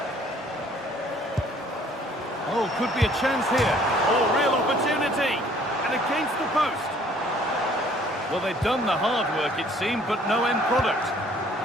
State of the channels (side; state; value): both; normal; correlation 0.58